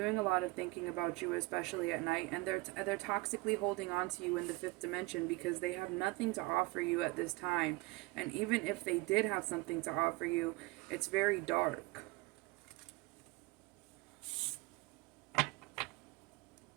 a lot of thinking about you, especially at night, and they're toxically holding on to you in the fifth dimension because they have nothing to offer you at this time. And even if they did have something to offer you, it's very dark.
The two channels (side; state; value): left; quieter; 23.5 dB